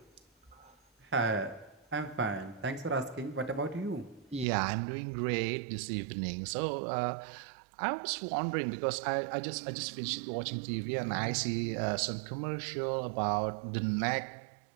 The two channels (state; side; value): drops out; left; at 4.5 s